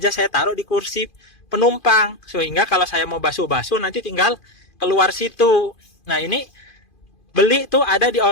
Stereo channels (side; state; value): right; late; 2.5 ms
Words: saya taruh di kursi penumpang, sehingga kalau saya mau basuh-basuh nanti tinggal keluar situ. Nah, ini beli tuh ada di